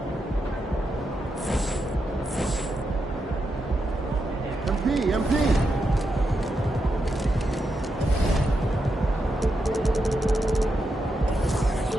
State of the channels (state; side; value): normal; both; correlation 0.85